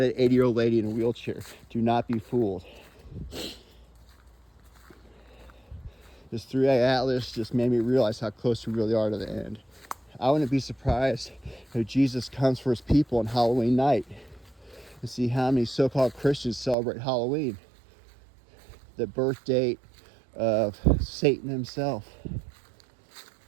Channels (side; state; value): left; drops out; at 16.8 s